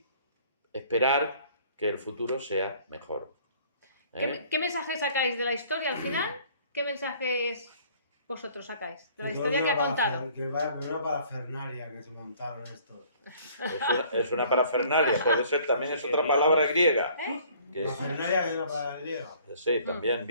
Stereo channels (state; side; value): inverted; both; correlation -0.56